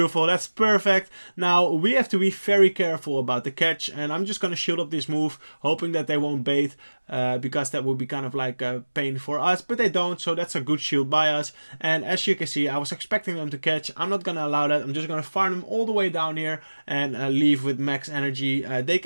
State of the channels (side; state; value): both; inverted; correlation -1.00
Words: that's perfect. Now we have to be very careful about the catch, and I'm just gonna shield up this move, hoping that they won't bait, because that would be kind of like a pain for us, but they don't, so that's a good shield by us. And as you can see, I was expecting them to catch. I'm not gonna allow that. I'm just gonna farm them all the way down here and leave with max energy. They